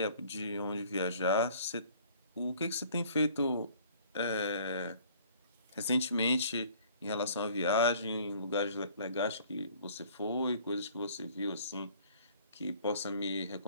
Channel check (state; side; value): inverted; both; correlation -0.55